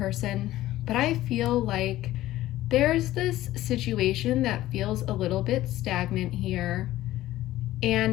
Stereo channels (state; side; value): quieter; right; 15.2 dB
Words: but I feel like there's this situation that feels a little bit stagnant here,